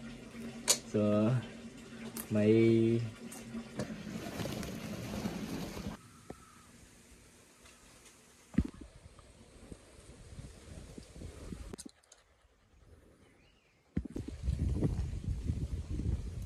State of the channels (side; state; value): both; identical; correlation 1.00